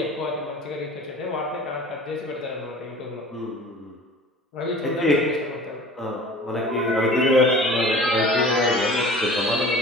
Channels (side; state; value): both; normal; correlation 0.43